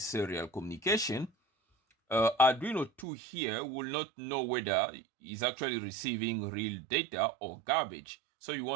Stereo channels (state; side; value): drops out; left; at 3.1 s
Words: serial communication, Arduino 2 here will not know whether it's actually receiving real data or garbage. So you